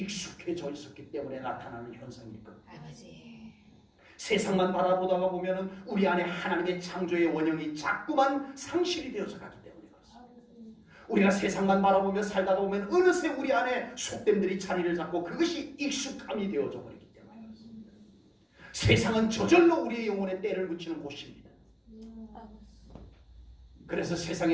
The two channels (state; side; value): identical; both; correlation 1.00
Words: 있었기 때문에 나타나는 현상일 겁니다. 아버지. 세상만 바라보다가 보면은 우리 안에 하나님의 창조의 원형이 자꾸만 상실이 되어서 가기 때문에 그렇습니다. 우리가 세상만 바라보며 살다가 보면 어느새 우리 안에 속됨들이 자리를 잡고 그것이 익숙함이 되어져 버리기 때문에 그렇습니다. 세상은 저절로 우리의 영혼에 때를 묻히는 곳입니다. 그래서